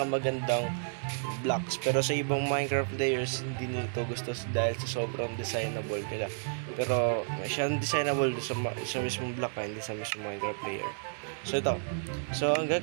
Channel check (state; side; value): silent; left; digital silence